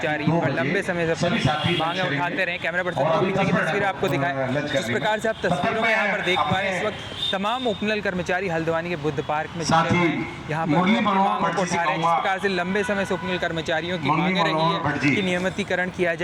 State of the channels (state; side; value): identical; both; correlation 1.00